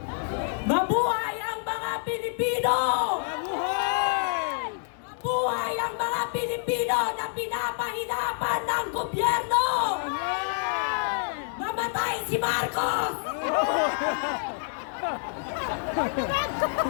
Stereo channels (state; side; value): silent; right; digital silence